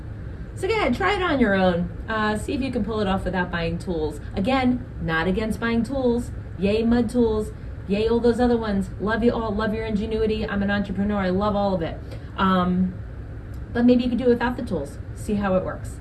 So go ahead, try it on your own. See if you can pull it off without buying tools. Again, not against buying tools. Yay mud tools, yay all those other ones. Love you all, love your ingenuity. I'm an entrepreneur, I love all of it. But maybe you could do it without the tools. See how it works.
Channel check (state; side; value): identical; both; correlation 1.00